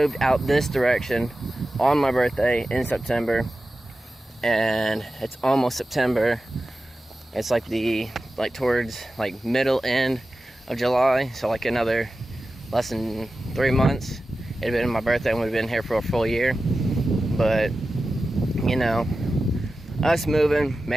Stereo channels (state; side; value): normal; both; correlation 0.94